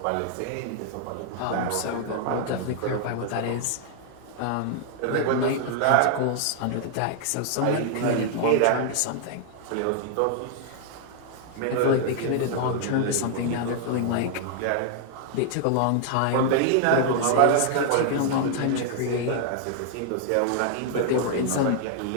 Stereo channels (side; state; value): both; different; correlation 0.00